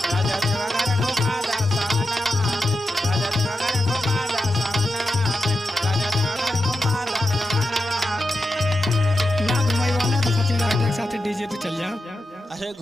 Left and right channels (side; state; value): both; normal; correlation 0.89